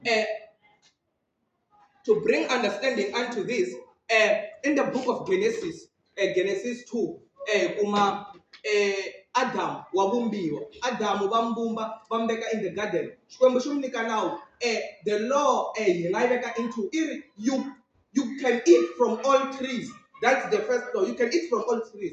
to bring understanding unto this in the book of Genesis, Genesis 2, Adam wabumbiwa. Adam bambumba bambeka in the garden. Now the law into you can eat from all trees. That's the first law. You can eat from all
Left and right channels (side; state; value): both; identical; correlation 1.00